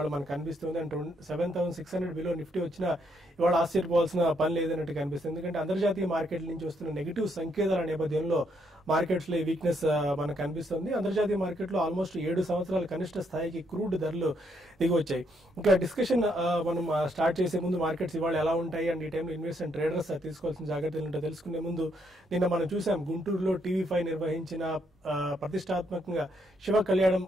మనకు కనిపిస్తుంది. అండ్ 7,600 బిలో నిఫ్టీ వచ్చినా ఇవాళ ఆశ్చర్యపోవాల్సిన పని లేదన్నట్టు కనిపిస్తుంది. ఎందుకంటే అంతర్జాతీయ మార్కెట్ల నుంచి వస్తున్న నెగిటివ్ సంకేతాల నేపథ్యంలో మార్కెట్స్ లో ఈ వీక్నెస్ మనకు కనిపిస్తుంది. అంతర్జాతీయ మార్కెట్ లో ఆల్మోస్ట్ 7 సంవత్సరాల కనిష్ట స్థాయికి క్రూడ్ ధరలు దిగి వచ్చాయి. ఇంకా డిస్కషన్ మనం స్టార్ట్ చేసే ముందు మార్కెట్స్ ఇవాళ ఎలా ఉంటాయి అండ్ ఈ టైంలో ఇన్వెస్టర్ అండ్ ట్రేడర్స్ తీసుకోవాల్సిన జాగ్రత్తలు ఏంటో తెలుసుకునే ముందు నిన్న మనం చూసాం గుంటూరులో TV5 నిర్వహించిన ప్రతిష్టాత్మకంగా శివ కళ్యాణం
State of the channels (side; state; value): both; normal; correlation 0.74